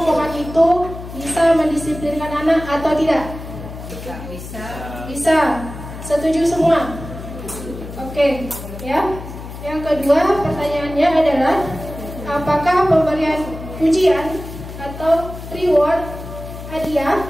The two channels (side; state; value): left; noise; hum, 11 dB below the sound